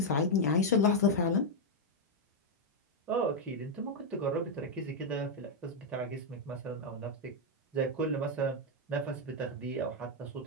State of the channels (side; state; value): both; normal; correlation 0.00